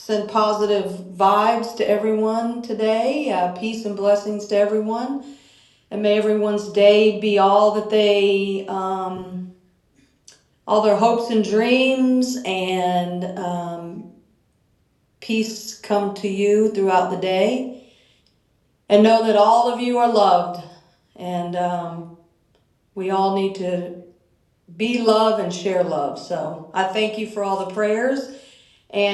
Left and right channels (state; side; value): identical; both; correlation 1.00